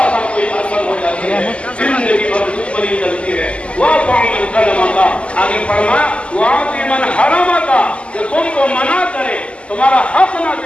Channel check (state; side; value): late; right; 0.056 ms